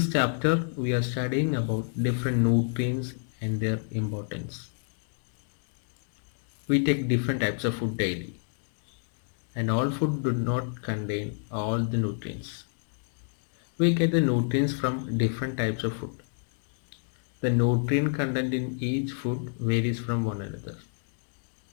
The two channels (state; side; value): silent; right; digital silence